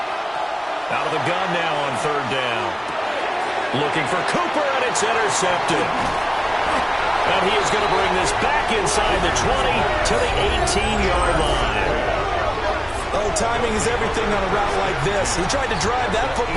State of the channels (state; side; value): identical; both; correlation 1.00